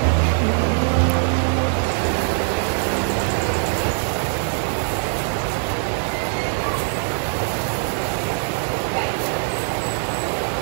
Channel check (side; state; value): left; silent; 58 dB below the other